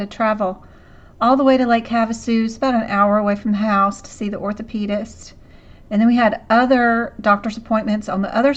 travel all the way to Lake Havasu. It's about an hour away from the house to see the orthopedist. And then we had other doctor's appointments on the other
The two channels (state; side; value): identical; both; correlation 1.00